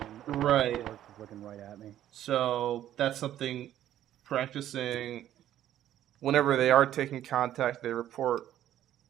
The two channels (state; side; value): quieter; left; 12.0 dB